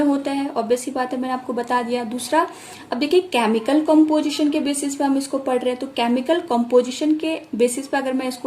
होता है, ऑब्वियस सी बात है, मैंने आपको बता दिया। दूसरा, अब देखिए केमिकल कंपोजिशन के बेसिस पे हम इसको पढ़ रहे हैं, तो केमिकल कंपोजिशन के बेसिस पे अगर मैं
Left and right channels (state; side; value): identical; both; correlation 1.00